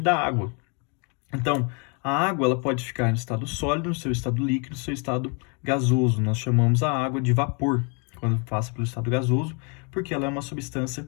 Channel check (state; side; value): quieter; right; 35.4 dB